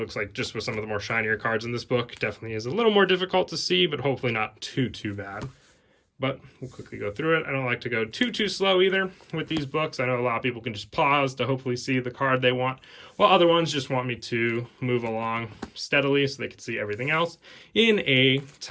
like just with some of the more shinier cards in this book, definitely is a little more difficult to see, but hopefully not too bad. But we'll quickly go through it. I don't like to go too slow either with these books. I know a lot of people can just pause to hopefully see the card they want, while other ones just want me to move along steadily so they can see everything else in a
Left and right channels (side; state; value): both; identical; correlation 1.00